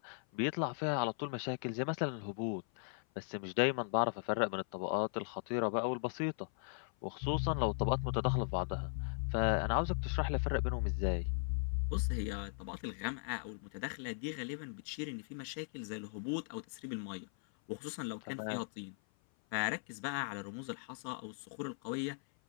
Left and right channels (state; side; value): silent; right; 52 dB below the other